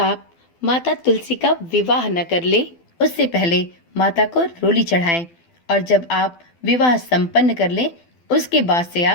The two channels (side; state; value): right; late; 12 ms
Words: माता तुलसी का विवाह न कर ले, उससे पहले माता को रोली चढ़ाएं, और जब आप विवाह संपन्न कर लें उसके बाद से